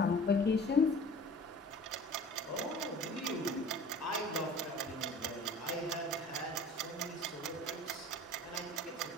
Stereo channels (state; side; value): normal; both; correlation 0.44